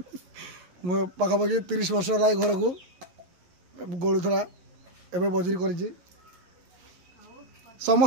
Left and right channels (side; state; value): left; late; 11 ms